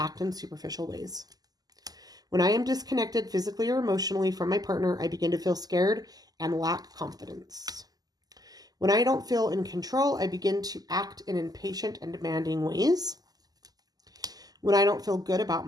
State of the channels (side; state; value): left; late; 0.18 ms